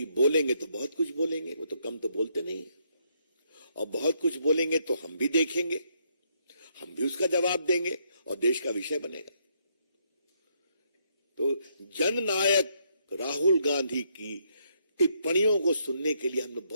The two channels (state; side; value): inverted; both; correlation -0.73